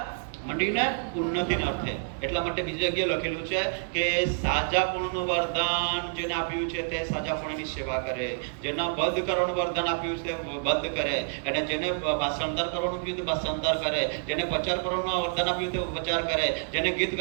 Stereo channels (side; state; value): left; silent; digital silence